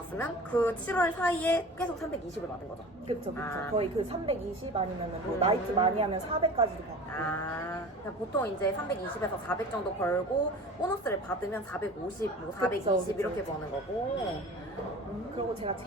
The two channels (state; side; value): normal; both; correlation 0.38